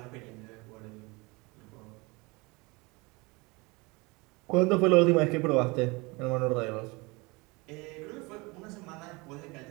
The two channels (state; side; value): quieter; left; 25.7 dB